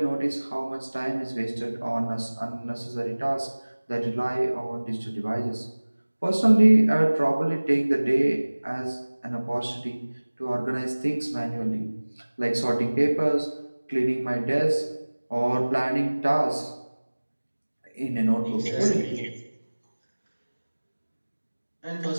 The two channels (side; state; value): both; inverted; correlation -1.00